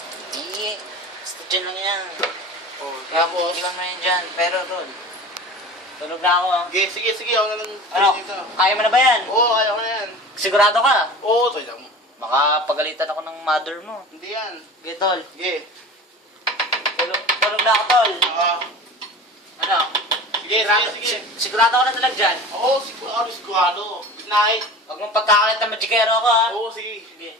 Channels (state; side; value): normal; both; correlation 0.36